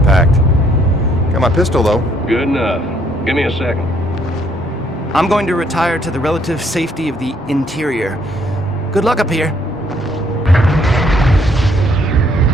Got my pistol, though. Good enough. Give me a second. I'm going to retire to the relative safety of the interior. Good luck up here.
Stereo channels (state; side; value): normal; both; correlation 0.67